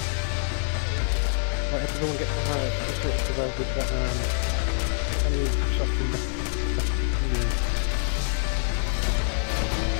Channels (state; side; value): silent; right; digital silence